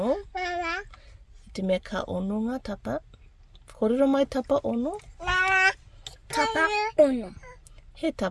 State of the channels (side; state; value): both; identical; correlation 1.00